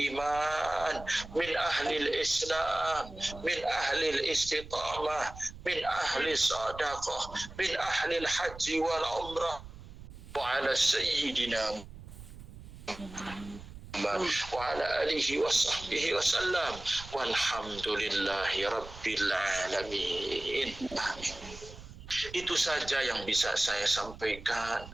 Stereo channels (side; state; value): right; noise; rumble, 15 dB below the sound